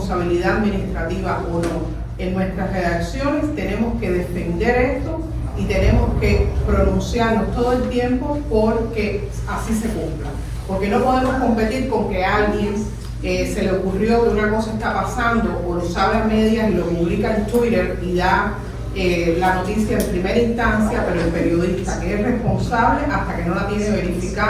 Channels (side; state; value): both; identical; correlation 1.00